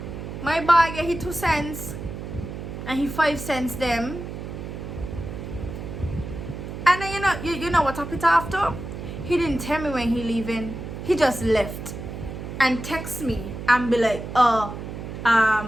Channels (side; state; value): right; noise; hum, 8 dB below the sound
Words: my boy get his 2 cents and he 5 cents them. And then you know what happened after? He didn't tell me when he leaving. He just left and text me and be like,